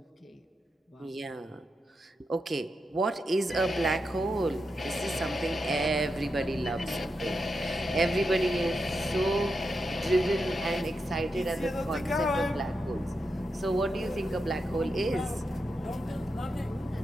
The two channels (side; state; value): both; normal; correlation 0.86